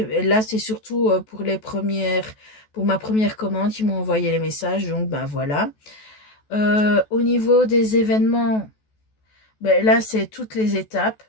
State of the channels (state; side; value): late; right; 14 ms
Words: là, c'est surtout pour ma première commande, ils m'ont envoyé les messages. Donc, voilà. Au niveau des événements, là, c'est toutes les étapes.